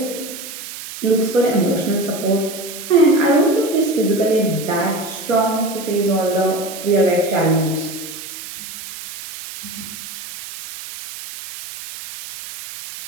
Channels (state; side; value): noise; right; hiss, 11 dB below the sound